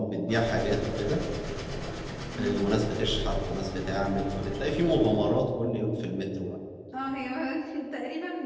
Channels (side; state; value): both; identical; correlation 1.00